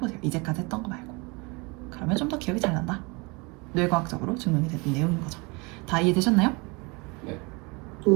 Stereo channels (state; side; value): quieter; left; 28.3 dB